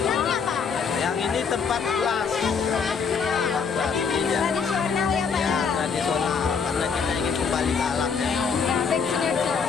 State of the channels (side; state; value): right; quieter; 5.9 dB